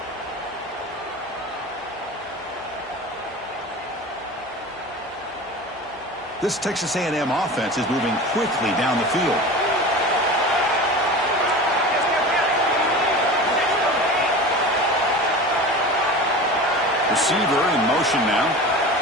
This Texas A&M offense is moving quickly down the field. Receiver in motion now.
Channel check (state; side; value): normal; both; correlation 0.33